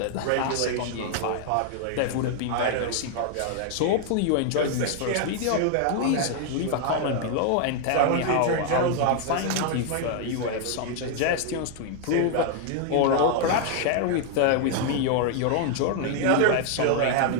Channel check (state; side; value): different; both; correlation 0.00